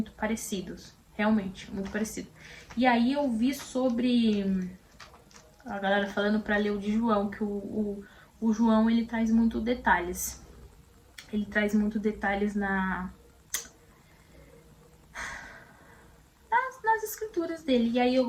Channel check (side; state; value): both; identical; correlation 1.00